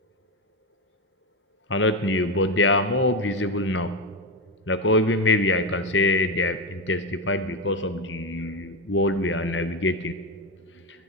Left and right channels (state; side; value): normal; both; correlation 0.13